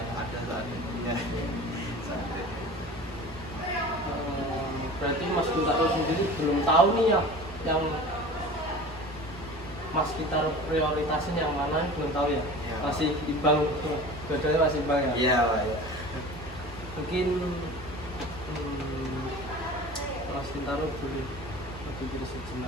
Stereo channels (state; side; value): normal; both; correlation 0.38